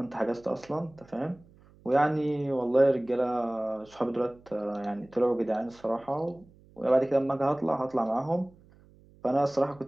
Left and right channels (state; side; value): noise; right; hum, 27 dB below the sound